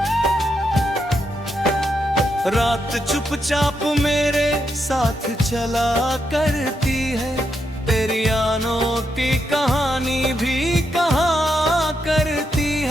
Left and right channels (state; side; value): normal; both; correlation 0.82